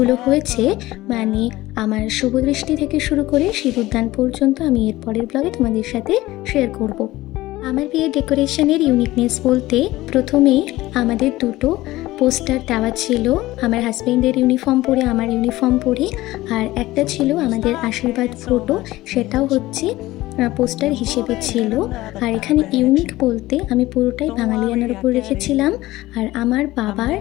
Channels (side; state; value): right; quieter; 17.6 dB